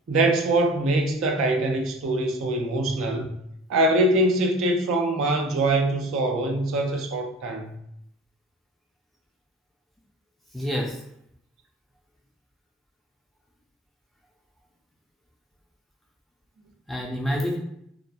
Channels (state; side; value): normal; both; correlation 0.39